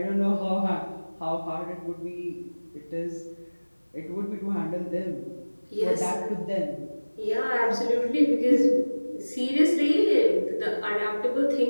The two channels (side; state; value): both; inverted; correlation -1.00